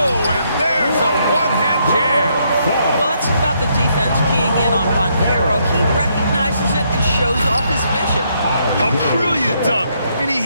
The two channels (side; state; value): both; inverted; correlation -0.74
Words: and there's a one-hand jam. Well, that's about the defense keying in on Bancaro. He recognizes it and shows off his vision. A brilliant dunk, and he